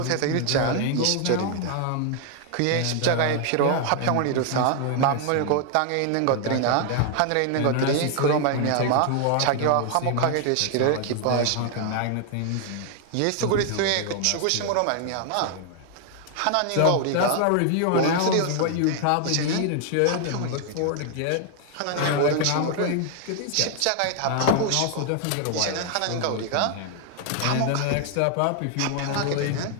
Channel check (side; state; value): both; different; correlation 0.00